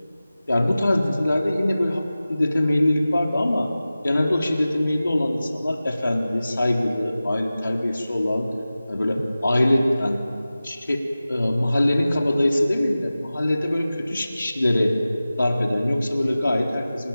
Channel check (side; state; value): both; inverted; correlation -0.96